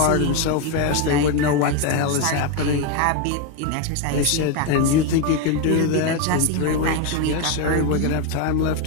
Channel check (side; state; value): both; different; correlation 0.02